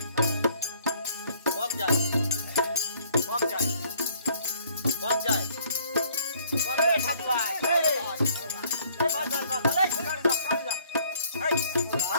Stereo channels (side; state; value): both; inverted; correlation -0.60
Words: কম যায় কম যায় কম যায়।